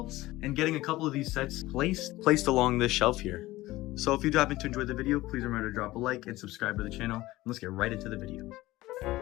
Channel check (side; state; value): right; quieter; 17.8 dB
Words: and getting a couple of these sets placed along this shelf here. So if you do happen to enjoy the video, please remember to drop a like and subscribe to the channel. And let's get right into the video.